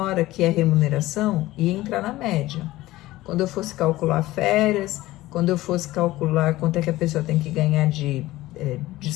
que é remuneração ia entrar na média. Quando eu fosse calcular férias, quando eu fosse calcular quanto é que a pessoa tem que ganhar de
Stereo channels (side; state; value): right; quieter; 17.2 dB